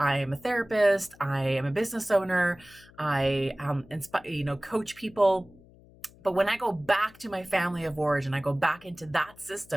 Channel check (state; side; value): noise; left; hum, 25 dB below the sound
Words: am a therapist, I am a business owner, I coach people. But when I go back to my family of origin, I go back into that